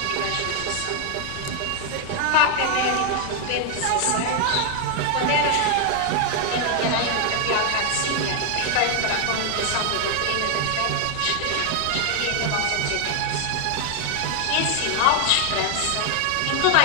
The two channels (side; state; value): both; different; correlation 0.01